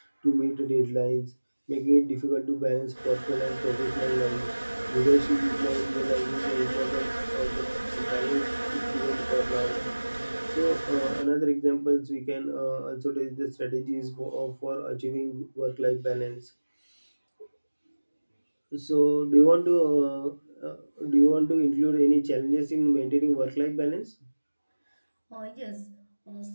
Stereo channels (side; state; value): both; inverted; correlation -1.00